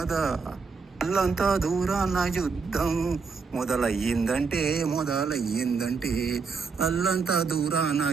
అల్లంతా దూరాన యుద్ధం మొదలయ్యిందంటే అల్లంతా దూరాన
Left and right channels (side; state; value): left; quieter; 5.0 dB